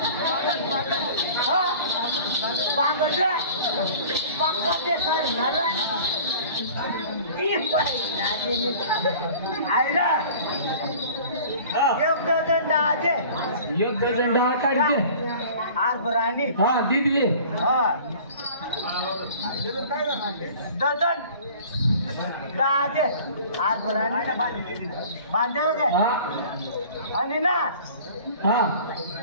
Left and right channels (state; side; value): inverted; both; correlation -0.45